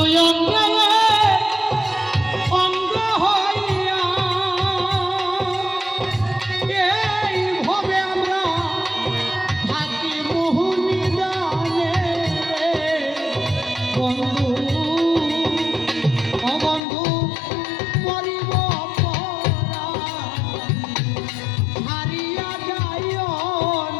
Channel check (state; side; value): drops out; right; at 16.8 s